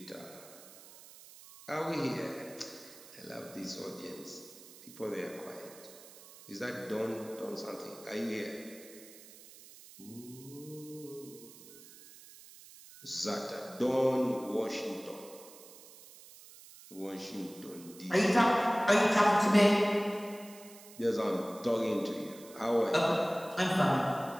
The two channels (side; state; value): right; noise; hiss, 19 dB below the sound